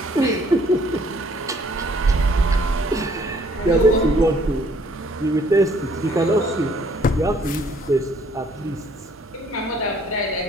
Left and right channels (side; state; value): both; normal; correlation 0.62